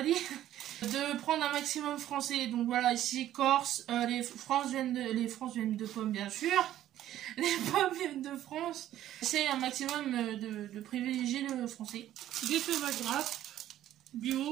dit, de prendre un maximum français. Donc voilà, ici, Corse, les France viennent de pommes, bien sûr. Les pommes viennent de France. C'est un maximum de privilégier le français. Des tomates grasses,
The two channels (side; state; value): left; quieter; 12.6 dB